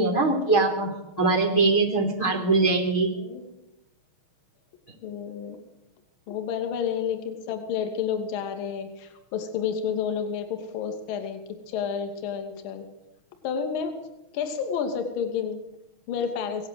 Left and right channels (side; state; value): right; late; 6.3 ms